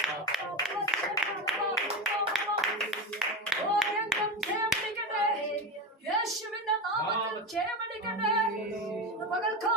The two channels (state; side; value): normal; both; correlation 0.20